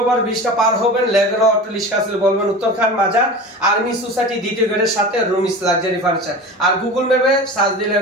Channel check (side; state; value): both; normal; correlation 0.33